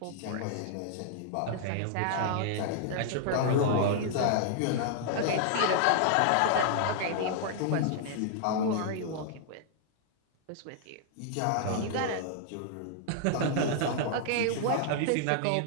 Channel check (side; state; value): both; different; correlation -0.01